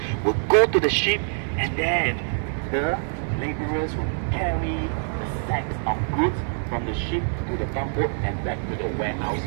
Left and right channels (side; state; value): left; silent; digital silence